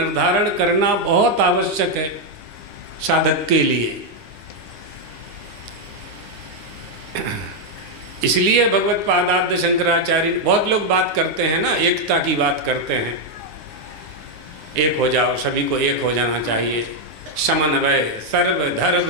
करना बहुत आवश्यक है साधक के लिए। इसलिए भगवत पादाद्य शंकराचार्य, बहुत लोग बात करते हैं ना, एकता की बात करते हैं, एक हो जाओ, सभी को एक हो जाना चाहिए, समन्वय,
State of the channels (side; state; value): left; late; 9.8 ms